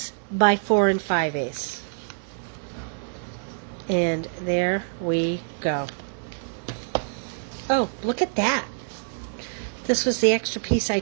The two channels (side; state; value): left; silent; digital silence